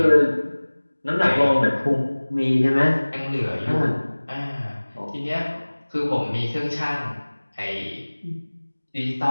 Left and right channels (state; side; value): inverted; both; correlation -1.00